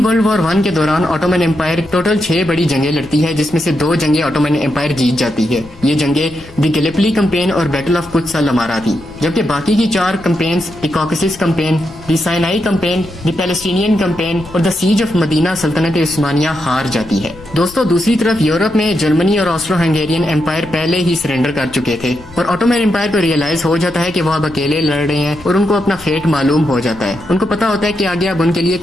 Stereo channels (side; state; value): left; noise; rumble, 20 dB below the sound